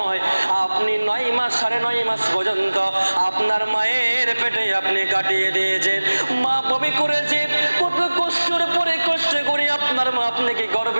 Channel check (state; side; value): inverted; both; correlation -1.00